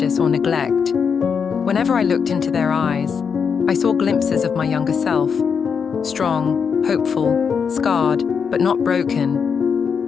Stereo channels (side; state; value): right; quieter; 6.4 dB